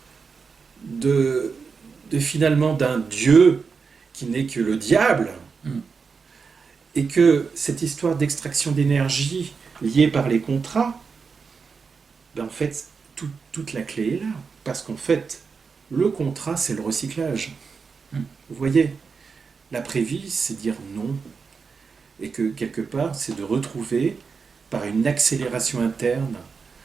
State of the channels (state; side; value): quieter; left; 5.3 dB